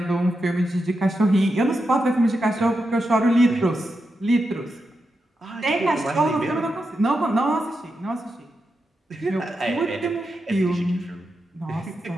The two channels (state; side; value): normal; both; correlation 0.87